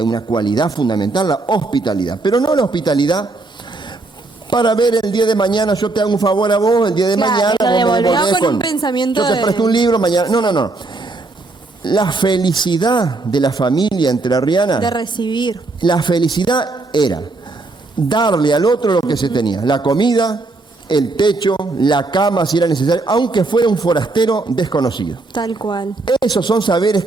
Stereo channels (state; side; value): quieter; left; 3.3 dB